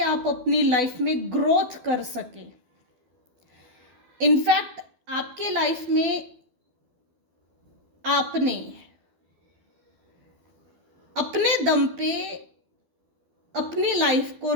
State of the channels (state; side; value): late; left; 12 ms